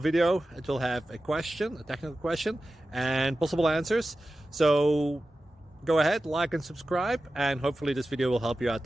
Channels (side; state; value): both; normal; correlation 0.94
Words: It will have a question, a technical question, and possible answers. So go ahead, like and subscribe, and hopefully this video will help you out